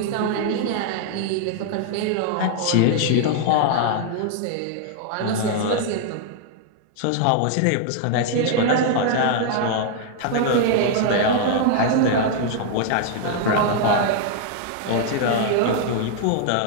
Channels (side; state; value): both; different; correlation 0.00